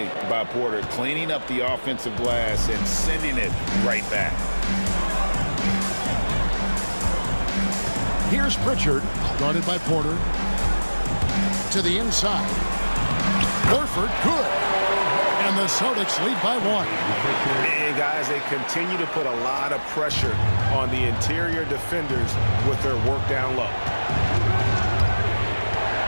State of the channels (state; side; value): inverted; both; correlation -1.00